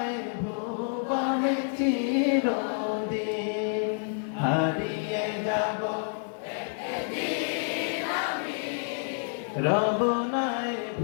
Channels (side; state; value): right; silent; digital silence